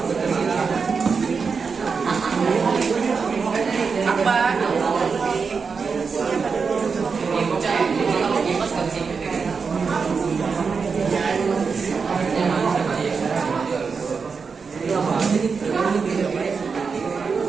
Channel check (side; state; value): left; quieter; 5.3 dB